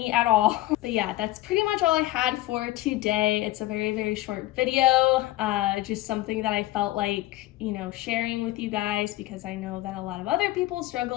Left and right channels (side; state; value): right; quieter; 16.8 dB